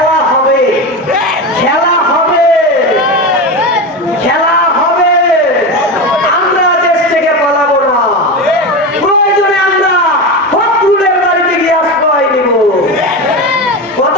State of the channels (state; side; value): normal; both; correlation 0.20